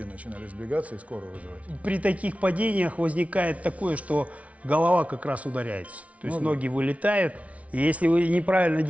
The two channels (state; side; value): late; left; 0.066 ms